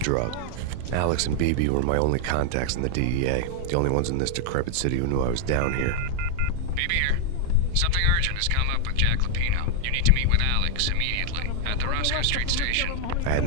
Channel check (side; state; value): both; different; correlation 0.00